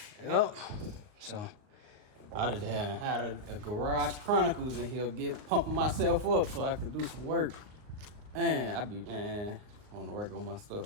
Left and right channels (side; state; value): left; late; 38 ms